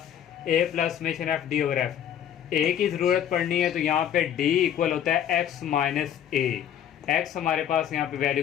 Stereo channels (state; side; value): quieter; right; 9.7 dB